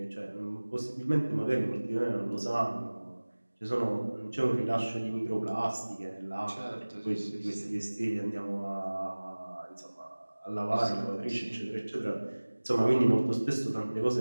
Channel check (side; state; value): both; inverted; correlation -1.00